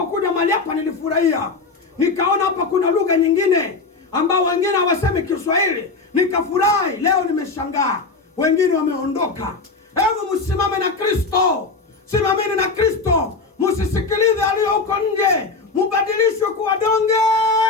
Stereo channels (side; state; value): right; quieter; 4.0 dB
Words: mahali hapa nilifurahia. Nikaona hapa kuna lugha nyingine ambao wengine hawasemi Kiswahili. Nikafurahi. Leo nimeshangaa, wengine wameondoka. Hebu msimame na Kristo. Simameni na Kristo. Msisikilize aliyo huko nje. Mubadilishwe kuwa donge